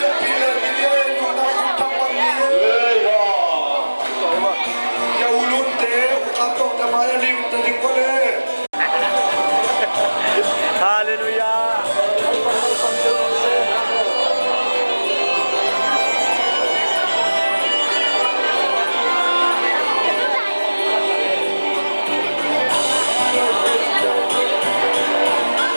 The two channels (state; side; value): inverted; both; correlation -1.00